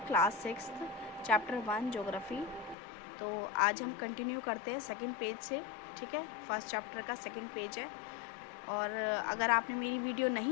क्लास 6 चैप्टर 1 ज्योग्राफी। तो आज हम कंटिन्यू करते हैं सेकंड पेज से। ठीक है, फर्स्ट चैप्टर का सेकंड पेज है। और अगर आपने मेरी वीडियो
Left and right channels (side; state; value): right; drops out; at 2.8 s